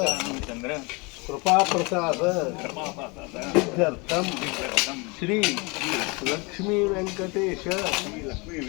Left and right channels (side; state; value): right; quieter; 28.2 dB